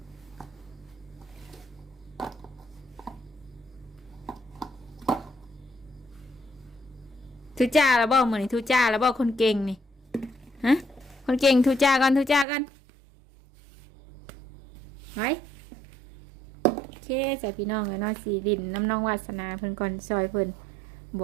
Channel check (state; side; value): drops out; left; at 12.5 s